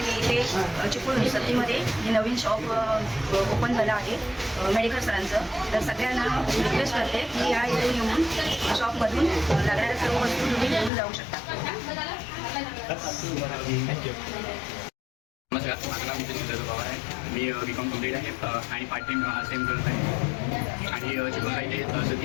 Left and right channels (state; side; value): drops out; right; at 10.9 s